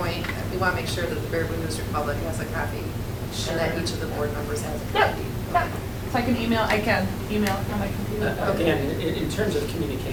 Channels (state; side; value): identical; both; correlation 1.00